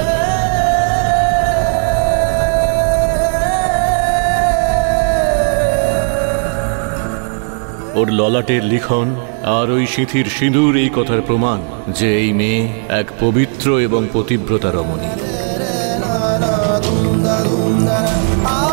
ওর ললাটের লিখন আর ওই সিঁথির সিঁদুর এই কথার প্রমাণ যে এই মেয়ে এক পবিত্র এবং পতিব্রতা রমণী।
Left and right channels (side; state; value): left; silent; 55 dB below the other